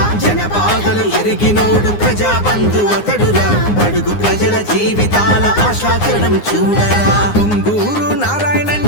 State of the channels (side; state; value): right; late; 9.7 ms